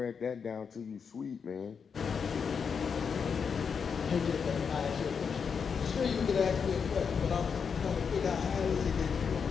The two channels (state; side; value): quieter; right; 6.2 dB